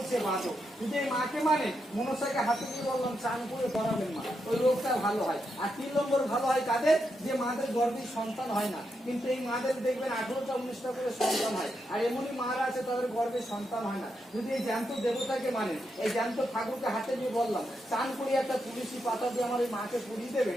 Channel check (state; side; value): normal; both; correlation 0.83